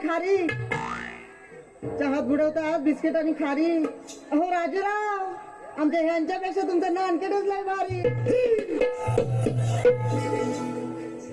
खारी. चहात बुडवतात बिस्किट आणि खारी. अहो राजूराव, आमच्या ह्यांच्यापेक्षा तुमचं नानकेटच लय भारी.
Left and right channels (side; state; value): both; identical; correlation 1.00